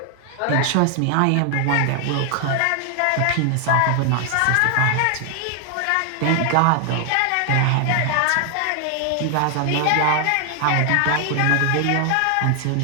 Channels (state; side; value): different; both; correlation 0.00